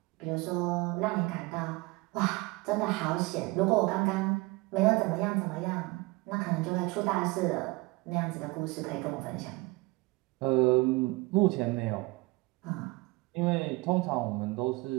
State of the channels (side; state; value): left; quieter; 23.8 dB